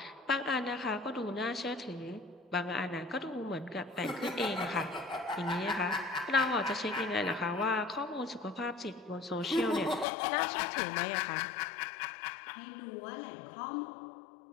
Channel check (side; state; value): right; drops out; at 10.1 s